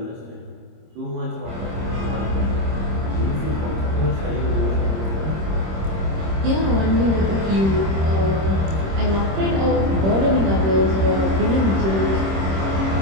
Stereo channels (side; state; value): left; late; 26 ms